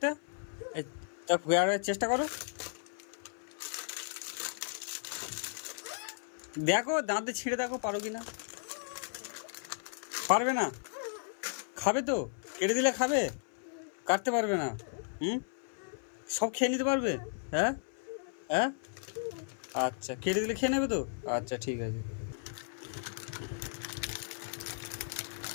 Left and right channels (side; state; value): right; silent; 55 dB below the other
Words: এই তা চেষ্টা করো, দেখো দাঁতে ছিঁড়ে দেখো পারো কি না। পারবে না, খাবে তো, কেটে দিলে খাবে, কাটতে পারবে না। হুম, সব খেয়ে নিতে পারবে? হ্যাঁ, হ্যাঁ, আচ্ছা কেটে দিলে খেয়ে নেবে তো, আচ্ছা ঠিক আছে,